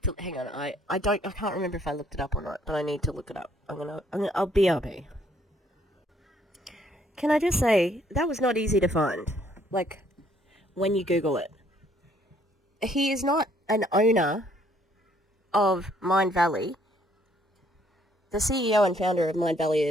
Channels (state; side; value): normal; both; correlation 0.65